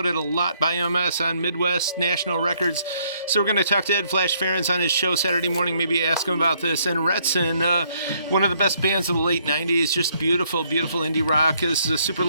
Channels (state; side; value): inverted; both; correlation -0.68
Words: a lot by MS on Midwest National Records. So we're going to talk to Ed Flash Ferens on his show Saturday morning, maybe ask him about this. And Retson, one of the best bands of the late 90s, just beautiful, beautiful indie rock. This is a super